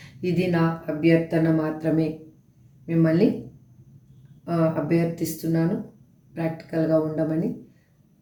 ఇది నా అభ్యర్థన మాత్రమే. మిమ్మల్ని అభ్యర్థిస్తున్నాను ప్రాక్టికల్గా ఉండమని.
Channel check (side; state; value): both; identical; correlation 1.00